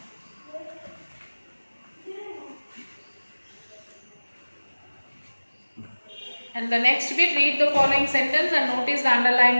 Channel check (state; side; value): inverted; both; correlation -1.00